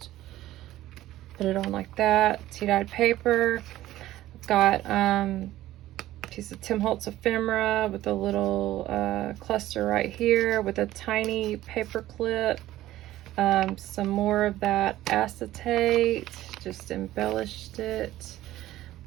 put it on like that. Tea-dyed paper. I've got a piece of Tim Holtz ephemera with a little cluster right here with a tiny paper clip. Some more of that acetate, just embellished it.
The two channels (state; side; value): quieter; left; 14.9 dB